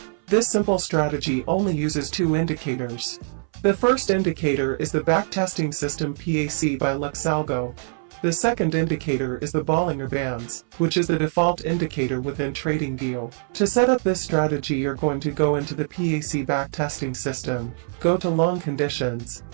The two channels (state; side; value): silent; left; 60 dB below the other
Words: This simple strategy only uses two indicators. The first indicator is the backtesting system PAC by Luxalgo. The second indicator is the Bollinger Bands, which is the default indicator within TradingView. To set up this strategy, you're going to go into the PAC backtesting system, go to long conditions,